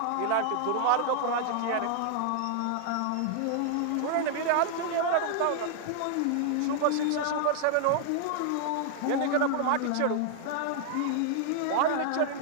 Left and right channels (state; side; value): different; both; correlation 0.00